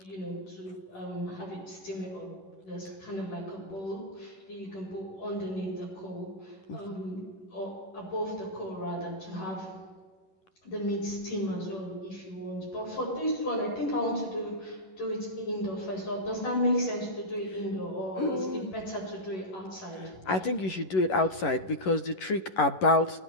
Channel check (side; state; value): right; late; 11 ms